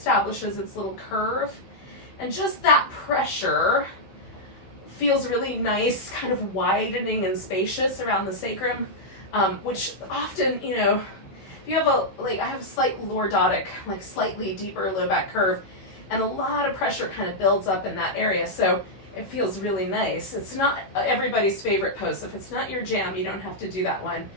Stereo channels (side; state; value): right; late; 15 ms